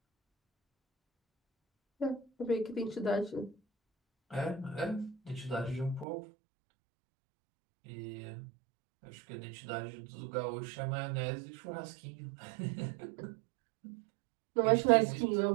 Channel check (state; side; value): drops out; left; at 6.1 s